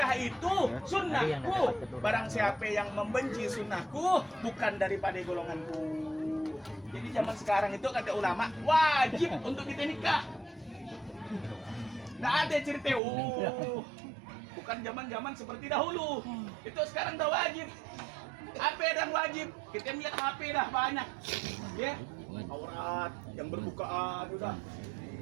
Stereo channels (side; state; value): left; drops out; at 13.0 s